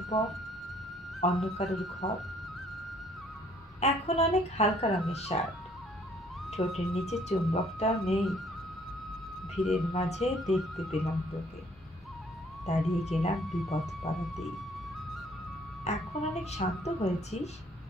বর, অন্য কারোর ঘর। এখন অনেক হালকা রঙের শার্ট, ঠোঁটের নিচে চুম্বকটাও নেই। ভিড়ের মাঝে দেখতে পেলাম তোকে, দাঁড়িয়ে গেলাম বিপদ পাড়াতেই। এখন অনেক শান্ত হয়েছিস,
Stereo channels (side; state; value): both; normal; correlation 0.61